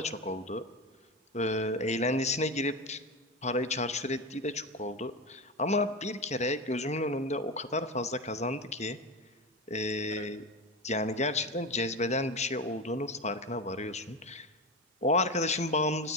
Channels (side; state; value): both; normal; correlation 0.20